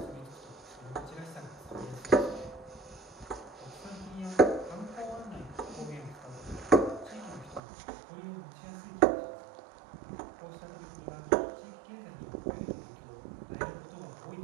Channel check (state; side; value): drops out; left; at 7.6 s